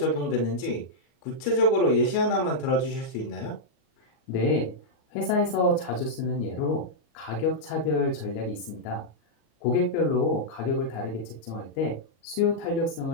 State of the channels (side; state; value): right; late; 34 ms